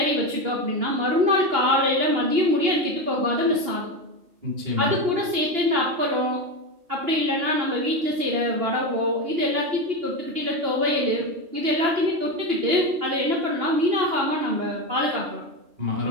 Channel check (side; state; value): left; late; 2.8 ms